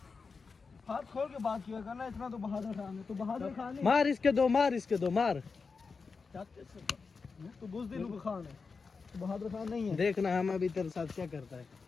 हाथ खोल के बात किया करना, इतना तो बहादुर खान है। तो बहादुर खान नहीं, मार इसके दो, मार इसके दो, मार। तो बुज़दिल खान है, तो बहादुर खान नहीं है। देखना हम अभी तेरे साथ क्या करता है।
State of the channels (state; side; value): quieter; right; 4.8 dB